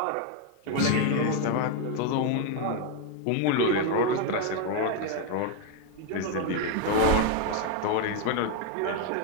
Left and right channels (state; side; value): different; both; correlation 0.01